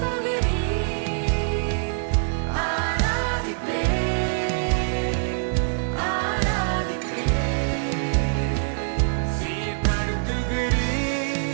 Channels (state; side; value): silent; left; digital silence